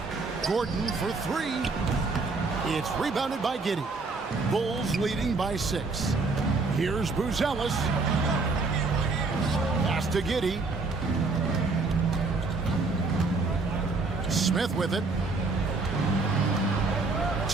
Gordon for 3. It's rebounded by Giddey. Bulls leading by 6. Here's Buzelis. Pass to Giddey. Smith with it.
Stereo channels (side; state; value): left; quieter; 3.8 dB